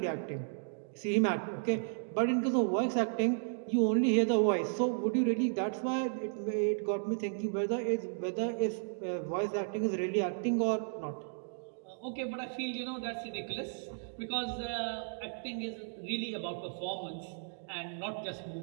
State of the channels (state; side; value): silent; left; digital silence